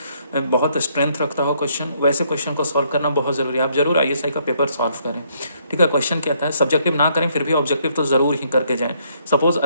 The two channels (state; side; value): inverted; both; correlation -0.70